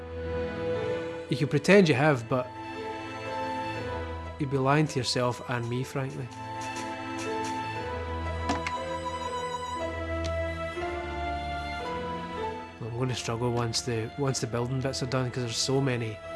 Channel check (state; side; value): identical; both; correlation 1.00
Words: You can pretend you have, but you'd be lying to yourself and me, frankly. I'm going to struggle once the building bits are done, because there's so many